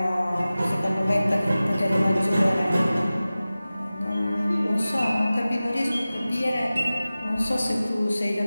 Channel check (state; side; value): inverted; both; correlation -0.97